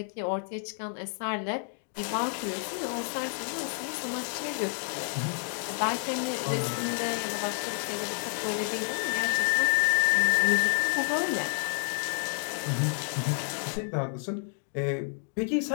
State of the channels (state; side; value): silent; right; 58 dB below the other